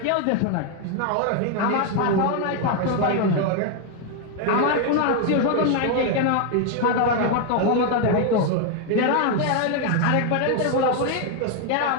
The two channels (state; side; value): different; both; correlation 0.01